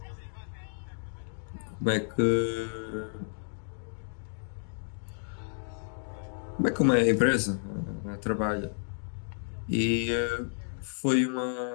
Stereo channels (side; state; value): right; silent; digital silence